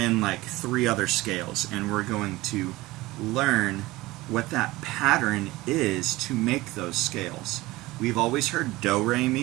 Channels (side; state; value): left; quieter; 19.4 dB